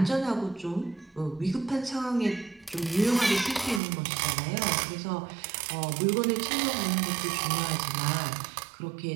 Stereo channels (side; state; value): left; drops out; at 3.8 s